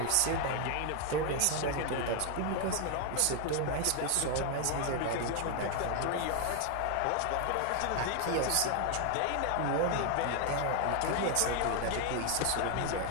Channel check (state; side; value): different; both; correlation 0.01